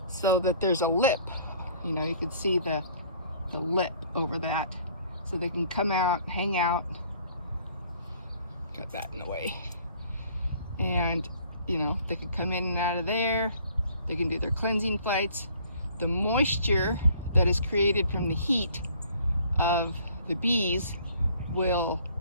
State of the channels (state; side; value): inverted; both; correlation -0.56